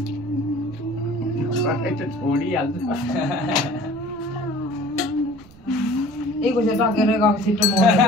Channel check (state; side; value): noise; right; rumble, 24 dB below the sound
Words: छोडिहाल्छ एक बजे टकेर गएको छिटो